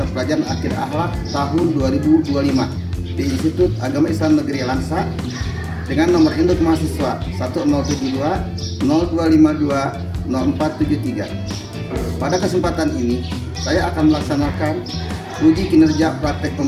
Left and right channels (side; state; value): both; identical; correlation 1.00